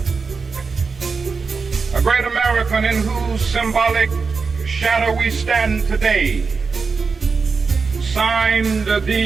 a great American in whose symbolic shadow we stand today signed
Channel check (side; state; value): left; quieter; 4.9 dB